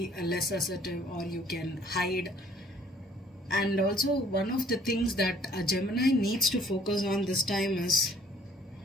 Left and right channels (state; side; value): normal; both; correlation 0.59